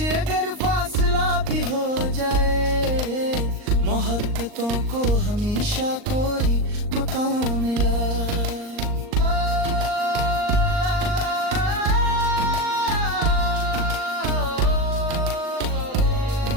अगर फासला भी हो जाए, मोहब्बतों को हमेशा कोई मकाम मिला।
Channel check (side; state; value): left; late; 39 ms